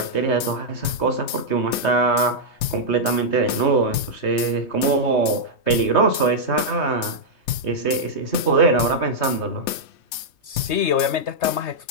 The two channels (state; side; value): late; right; 3.2 ms